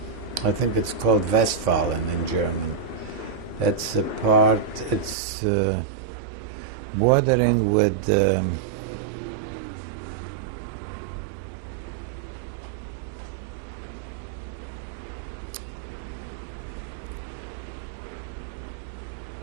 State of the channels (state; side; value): drops out; left; at 5.2 s